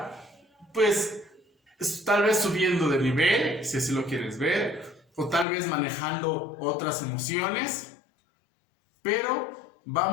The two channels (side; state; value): right; drops out; at 5.5 s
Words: pues, tal vez subiendo de nivel, si así lo quieres ver, o tal vez manejando otras emociones, pero